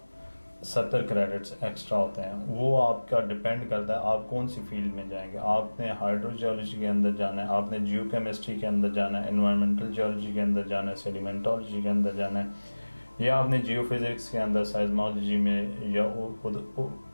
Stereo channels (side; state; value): both; inverted; correlation -1.00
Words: 70 क्रेडिट्स एक्स्ट्रा होते हैं, वो आपका डिपेंड करता है आप कौन सी फील्ड में जाएंगे। आपने हाइड्रोजियोलॉजी के अंदर जाना है, आपने जियोकेमिस्ट्री के अंदर जाना है, एनवायरमेंटल जियोलॉजी के अंदर जाना है, सेडिमेंटोलॉजी के अंदर जाना है, या आपने जियोफिजिक्स के अंदर साइज्मोलॉजी में या